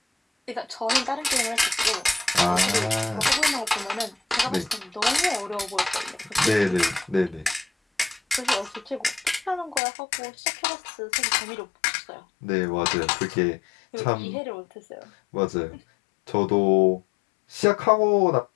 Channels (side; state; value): right; drops out; at 9.8 s